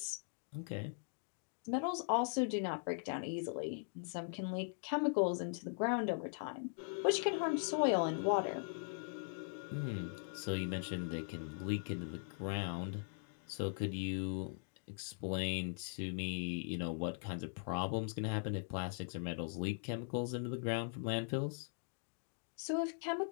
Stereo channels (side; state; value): right; silent; digital silence